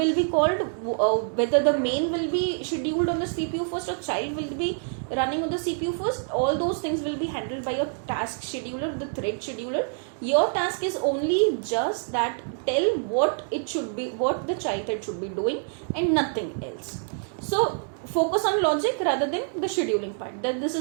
be called, whether the main will be scheduled on the CPU first or child will be running on the CPU first. All those things will be handled by your task scheduler, the thread scheduler. Your task is only just that, tell what it should be, what the child thread should be doing, and nothing else. So focus on logic rather than the scheduling part. That this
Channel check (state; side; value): silent; left; 61 dB below the other